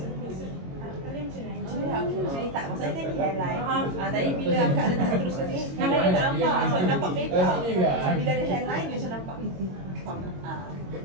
Kalian macam ni. Macam ni tak. Maksudnya kan ni hairline. Tadi bila akak letak teruskan sini, hairline dia tak nampak. Sebab nampak petak. So bila ada hairline dia macam nampak. Faham tak?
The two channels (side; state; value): left; late; 22 ms